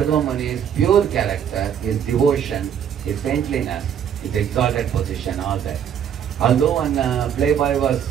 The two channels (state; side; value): quieter; left; 8.7 dB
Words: Muni's pure character, his devotion, his saintliness, his exalted position, all that. Although when playboy was,